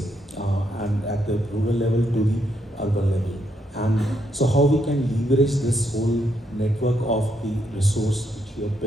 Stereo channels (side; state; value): both; normal; correlation 0.77